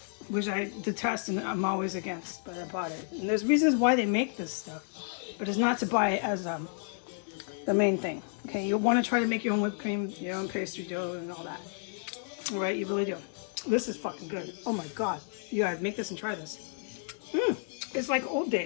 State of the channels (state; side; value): silent; right; 57 dB below the other